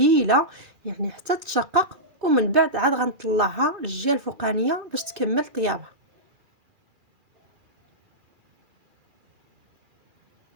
يعني حتى تشقق، ومن بعد عاد غنطلعها للجهه الفوقانيه باش تكمل طيابها.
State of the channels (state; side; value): late; left; 2.4 ms